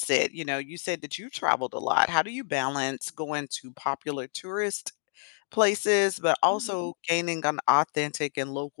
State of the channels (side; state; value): right; silent; digital silence